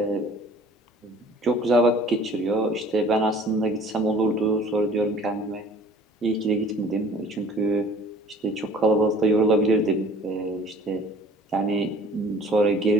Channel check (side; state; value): both; normal; correlation 0.50